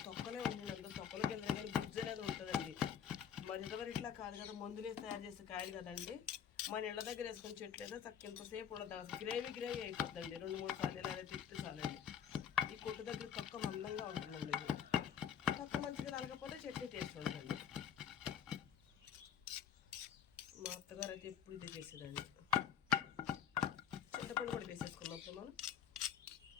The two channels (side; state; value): right; quieter; 8.6 dB